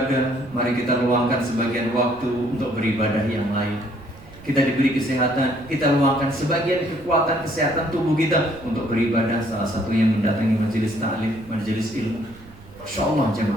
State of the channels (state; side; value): noise; right; rumble, 22 dB below the sound